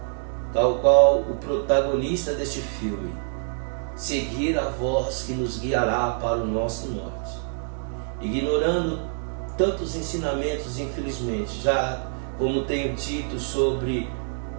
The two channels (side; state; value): left; silent; 61 dB below the other